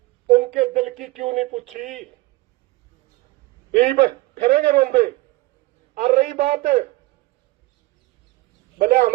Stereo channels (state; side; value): quieter; left; 20.1 dB